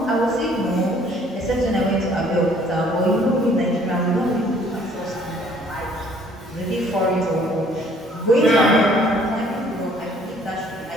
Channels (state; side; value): normal; both; correlation 0.59